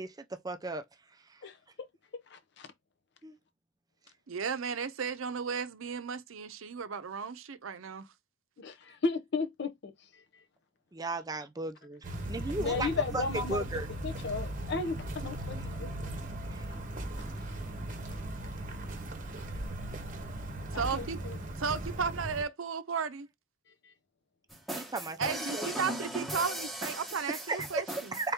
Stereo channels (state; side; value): normal; both; correlation 0.18